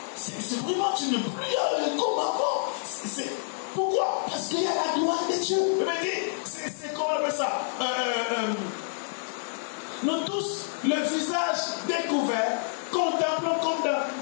C'est vraiment, tu n'es plus comme avant. Pourquoi? Parce qu'il y a la gloire de Dieu. C'est comment on appelle ça? Nous tous, le visage découvert, contemplons comme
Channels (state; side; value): silent; right; digital silence